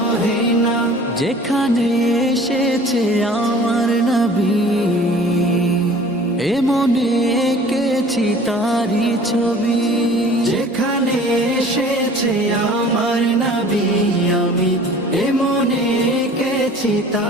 না। যেখানে এসেছে আমার নবী, এ মনে এঁকেছি তারি ছবি। যেখানে এসেছে আমার নবী, আমি এ মনে এঁকেছি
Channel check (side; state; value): both; normal; correlation 0.47